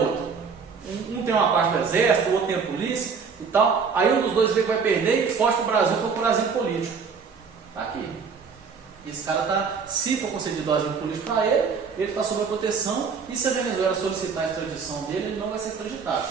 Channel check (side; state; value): left; quieter; 5.7 dB